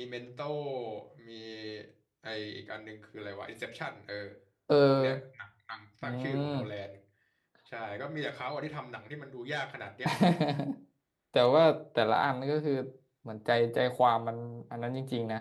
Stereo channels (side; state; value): both; identical; correlation 1.00